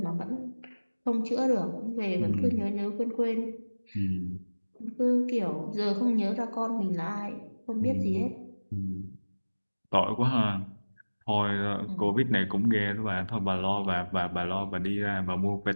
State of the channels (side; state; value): both; inverted; correlation -1.00